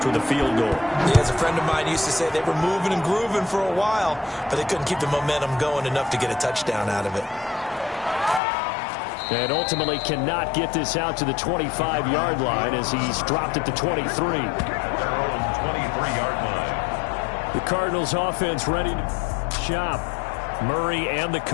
with a field goal. Yeah, as a friend of mine used to say, they were moving and grooving for a while, but they couldn't keep the momentum going enough to get a touchdown out of it. And ultimately cannot get this out to the 25-yard line as he's dropped at the 23. Their own 23-yard line. The Cardinals offense ready to shop. Murray and the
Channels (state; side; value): drops out; right; at 8.4 s